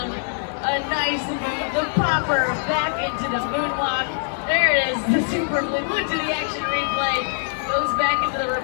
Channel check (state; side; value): silent; right; digital silence